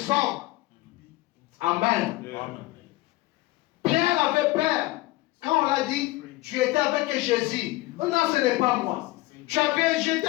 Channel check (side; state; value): right; quieter; 19.2 dB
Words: hommes. Amen. Amen. Pierre avait peur. Quand on l'a dit, tu étais avec Jésus. Oh non, ce n'est pas moi. Je